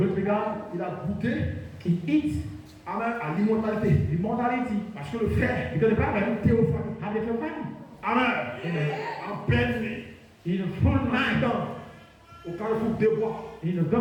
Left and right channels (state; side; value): identical; both; correlation 1.00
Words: to be God. Il a goûté, He eats amen, à l'immortalité. immortality. Parce que le fer, Because the Bible théophanie. have the theophany. Amen. En pleine nuit. In a full night. Au carrefour des bois. In a good